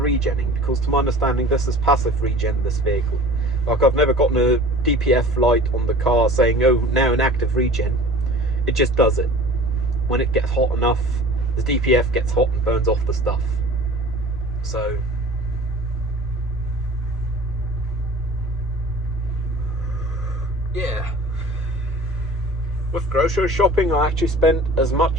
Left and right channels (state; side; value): normal; both; correlation 0.43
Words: because to my understanding, this is passive regen, this vehicle. Like, I've never gotten a DPF light on the car saying, oh, now an active regen. It just does it. When it gets hot enough, the DPF gets hot and burns off the stuff. So, yeah. With grocery shopping, I actually spent as